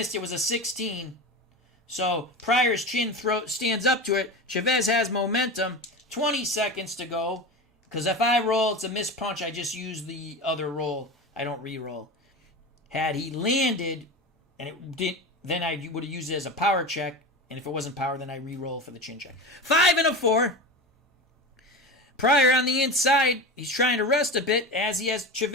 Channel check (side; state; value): both; normal; correlation 0.26